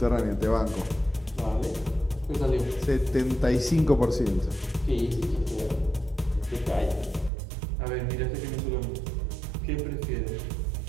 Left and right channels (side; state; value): left; drops out; at 7.3 s